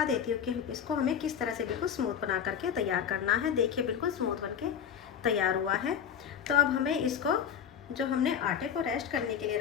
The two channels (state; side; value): quieter; right; 8.1 dB